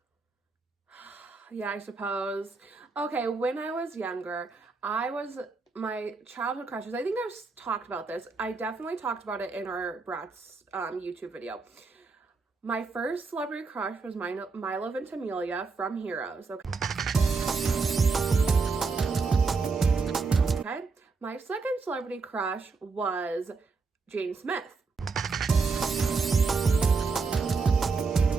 Yeah, I suppose. Okay, when I was younger, my childhood crushes, I think I've talked about this. I definitely talked about it in our Bratz YouTube video. My first celebrity crush was Milo Ventimiglia from Heroes, okay? Okay. My second celebrity crush was Jane Smith.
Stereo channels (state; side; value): quieter; left; 4.5 dB